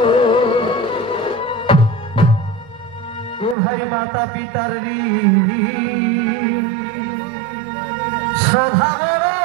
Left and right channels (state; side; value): drops out; left; at 3.6 s